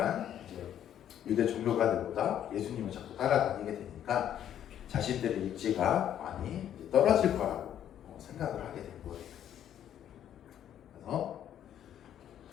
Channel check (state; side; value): quieter; right; 10.4 dB